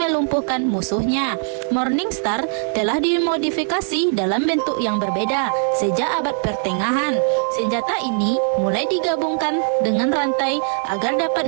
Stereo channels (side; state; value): left; silent; digital silence